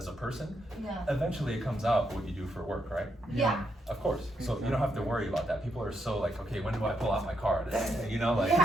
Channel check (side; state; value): both; normal; correlation 0.79